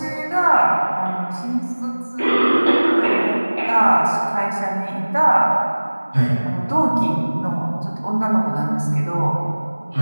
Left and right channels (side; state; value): both; inverted; correlation -1.00